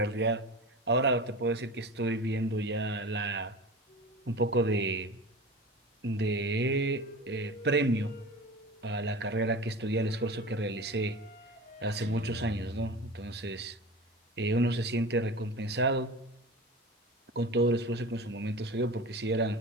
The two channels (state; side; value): normal; both; correlation 0.32